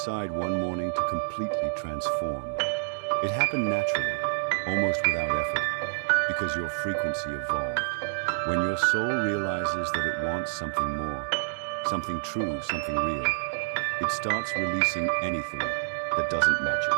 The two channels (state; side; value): silent; left; digital silence